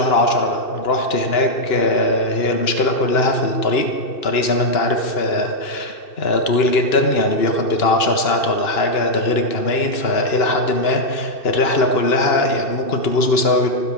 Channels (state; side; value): late; right; 2.9 ms